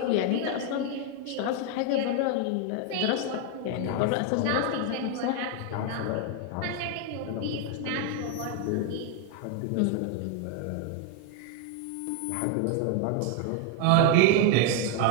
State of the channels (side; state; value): both; different; correlation 0.00